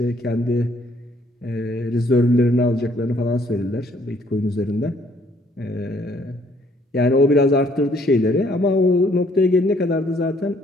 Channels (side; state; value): both; normal; correlation 0.65